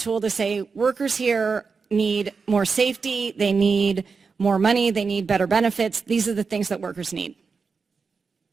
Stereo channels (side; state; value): left; quieter; 5.0 dB